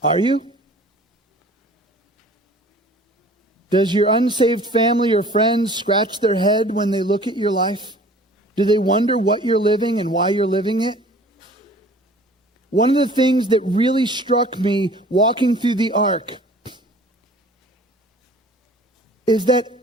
Are you? Does your unsaved family or friends scratch their head when they look at your life? Do they wonder what you're living and why you're living it? One of the things that really struck me walking through the ark is that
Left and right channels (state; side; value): normal; both; correlation 0.48